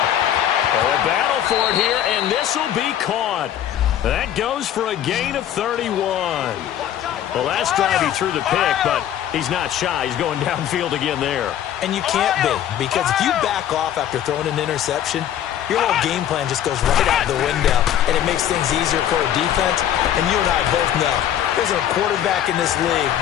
Oh, a battle for it here, and this will be caught. That goes for a gain of 31. The last drive he threw the pick, but he's not shy. He's going downfield again there. And you can't be, because if you back off after throwing an interception, your whole game plan just goes right out the window, and it makes things easier for a defense. And you and I both know there's a quarterback in this league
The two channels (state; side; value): quieter; right; 10.8 dB